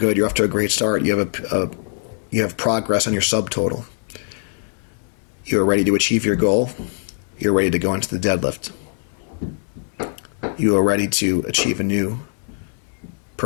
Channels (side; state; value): right; silent; 59 dB below the other